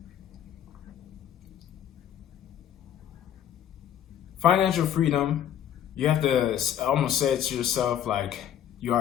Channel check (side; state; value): right; quieter; 10.1 dB